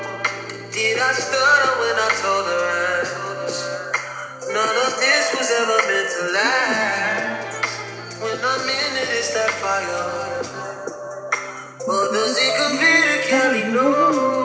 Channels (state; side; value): identical; both; correlation 1.00